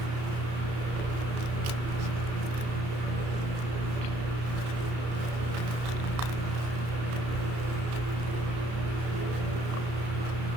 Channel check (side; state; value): left; late; 33 ms